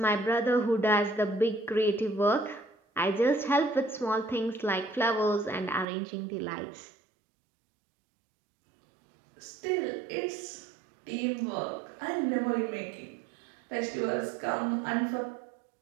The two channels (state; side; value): drops out; left; at 5.9 s